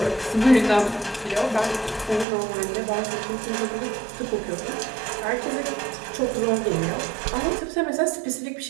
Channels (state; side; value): drops out; left; at 2.2 s